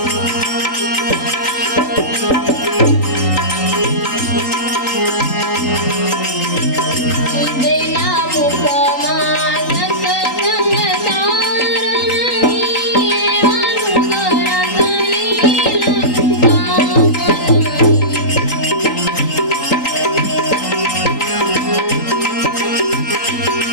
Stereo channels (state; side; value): late; right; 3.8 ms